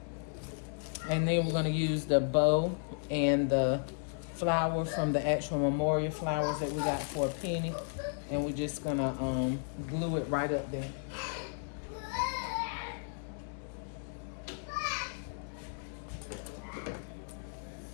And then we're going to use the bow and the flower from the actual memorial flowers that we got for a penny. And we're just going to glue it right up there.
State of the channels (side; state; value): right; silent; digital silence